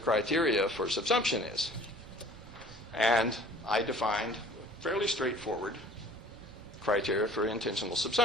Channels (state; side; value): noise; right; rumble, 19 dB below the sound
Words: for subsumption is. And I defined fairly straightforward criteria for intentional